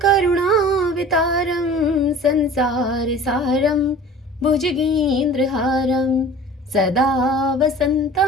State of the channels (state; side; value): normal; both; correlation 0.42